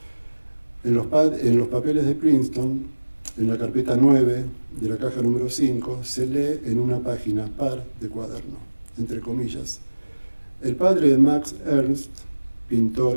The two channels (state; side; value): inverted; both; correlation -1.00